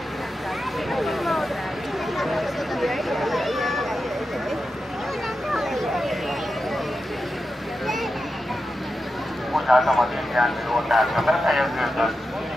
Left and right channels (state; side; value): normal; both; correlation 0.90